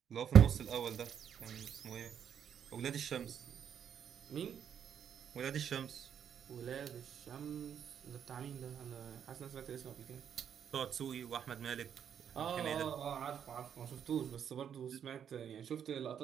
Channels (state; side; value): quieter; left; 8.5 dB